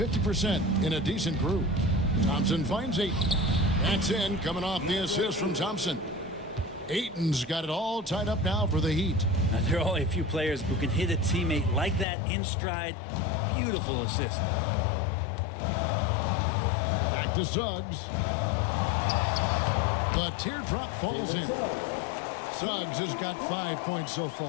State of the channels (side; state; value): right; drops out; at 12.1 s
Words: in a decent group. Thompson finds Ayton. That's in, coming off the assist from Thompson. Ayton's got it all tied up now for the Heat. Now, there are only a few players who can hit a teammate like that in stride Beautiful assist. Back to Suggs. The teardrop falls in. Suggs has got 5 points so